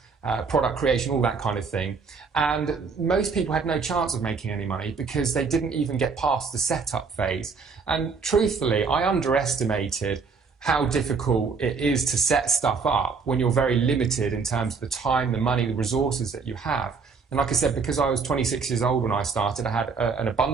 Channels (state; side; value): quieter; left; 5.1 dB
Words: product creation, all that kind of thing. And most people had no chance of making any money because they didn't even get past the setup phase. And truthfully, I underestimated how difficult it is to set stuff up when you're very limited in terms of the time, the money, the resources that you have. And like I said, because I was 26 years old when I started, I had an